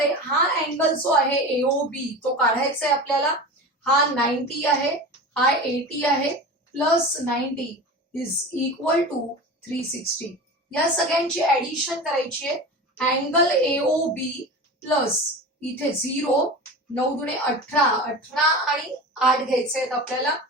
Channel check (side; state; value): both; normal; correlation 0.30